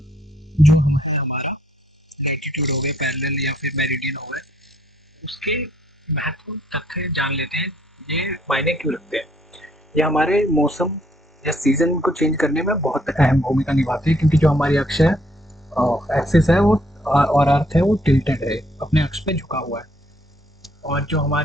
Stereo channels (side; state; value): both; normal; correlation 0.67